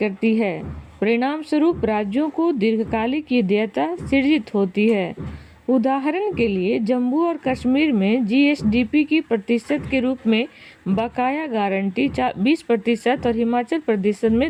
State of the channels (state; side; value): identical; both; correlation 1.00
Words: है। परिणाम स्वरूप राज्यों को दीर्घकालिक देयता सृजित होती है। उदाहरण के लिए जम्मू और कश्मीर में GSDP की प्रतिशत के रूप में बकाया गारंटी 20% और हिमाचल प्रदेश